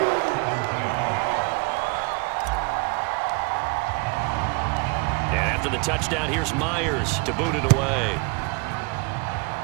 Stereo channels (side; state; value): left; quieter; 27.8 dB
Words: And after the touchdown, here's Myers to boot it away.